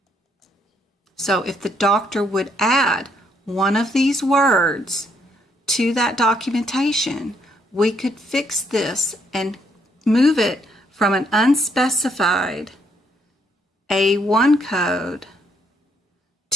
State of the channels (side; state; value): both; normal; correlation 0.71